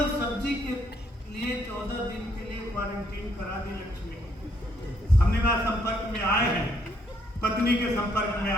सब्जी के लिए 14 दिन के लिए क्वारंटीन करा दी लक्ष्मी। हमने कहा संपर्क में आए हैं, पत्नी के संपर्क में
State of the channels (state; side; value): normal; both; correlation 0.70